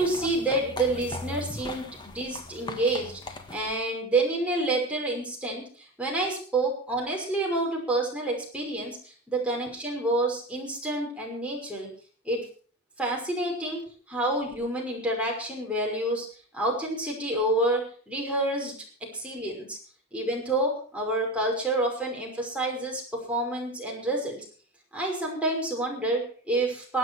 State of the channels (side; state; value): both; normal; correlation 0.26